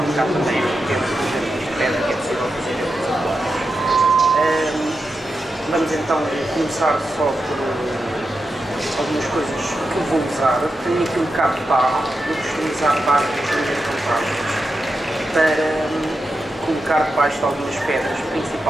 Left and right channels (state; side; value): normal; both; correlation 0.88